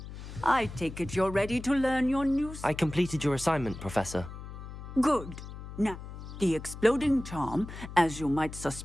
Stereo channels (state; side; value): noise; left; hum, 11 dB below the sound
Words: I take it you're ready to learn your new... I completed your assignment, Professor. Good. Now, the exploding charm, as you might